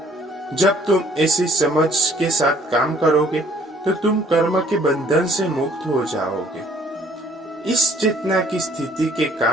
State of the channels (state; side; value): normal; both; correlation 0.59